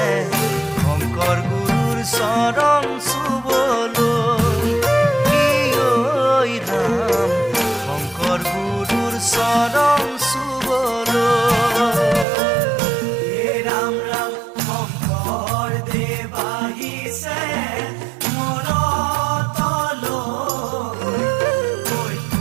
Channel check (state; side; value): drops out; left; at 12.2 s